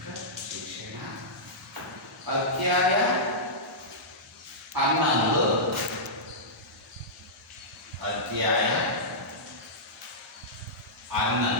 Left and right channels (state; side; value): normal; both; correlation -0.14